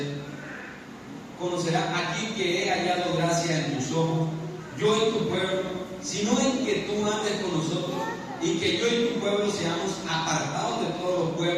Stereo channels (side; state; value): both; identical; correlation 1.00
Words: Conocerá aquí que he hallado gracia en tus ojos, yo y tu pueblo, sino en que tú andes con nosotros y que yo y tu pueblo seamos apartados de todos los